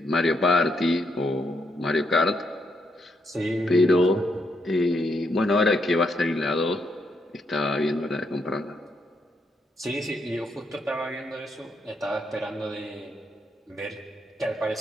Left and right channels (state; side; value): normal; both; correlation 0.78